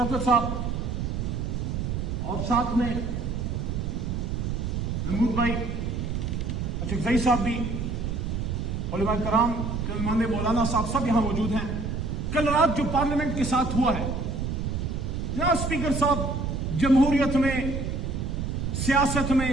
صاحب اور ساتھ میں محمود بھائی، اچھا صاحب بھی، علماء کرام، علماء مولانا صاحب سب یہاں موجود ہیں. کل رات جو پارلیمنٹ کے ساتھ ہوا ہے، جناب اسپیکر صاحب، جمہوریت میں، سیاست میں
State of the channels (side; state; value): right; noise; rumble, 2 dB below the sound